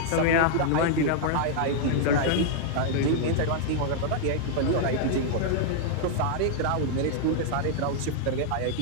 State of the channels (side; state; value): both; different; correlation -0.01